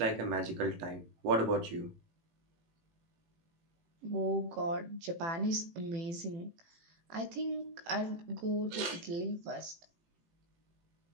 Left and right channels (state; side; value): late; left; 18 ms